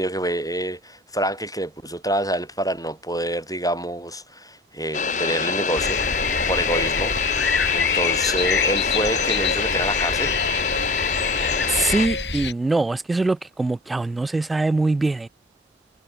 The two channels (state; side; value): normal; both; correlation 0.42